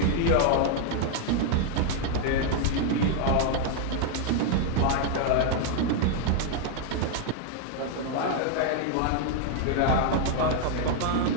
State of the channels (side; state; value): both; different; correlation 0.00